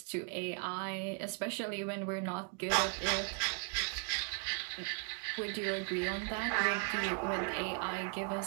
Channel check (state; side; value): quieter; left; 35.6 dB